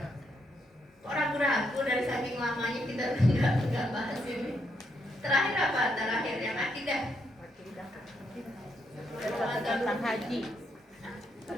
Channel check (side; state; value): both; normal; correlation 0.77